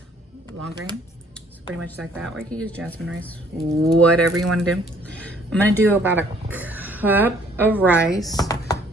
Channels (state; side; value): normal; both; correlation 0.61